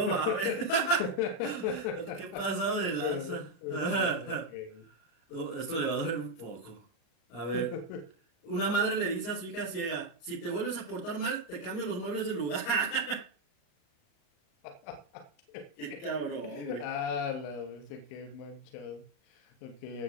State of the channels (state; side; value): late; right; 38 ms